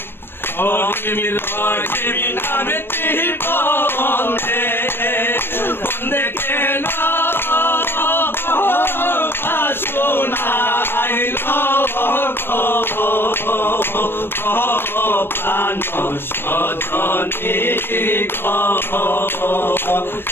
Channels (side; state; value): right; late; 0.10 ms